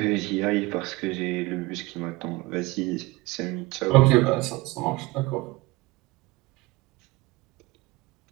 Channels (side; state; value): left; quieter; 21.4 dB